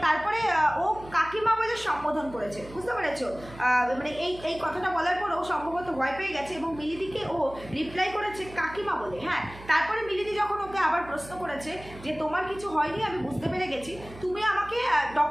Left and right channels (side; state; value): right; noise; hum, 17 dB below the sound